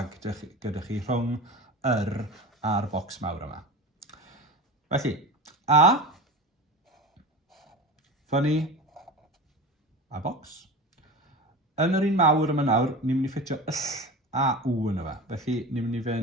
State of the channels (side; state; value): both; normal; correlation 0.32